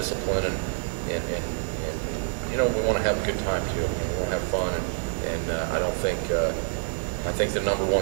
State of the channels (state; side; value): silent; left; 55 dB below the other